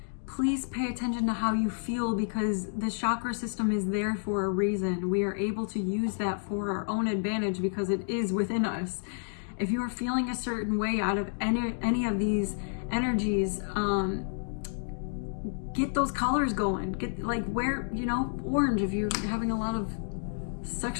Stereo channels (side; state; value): right; silent; digital silence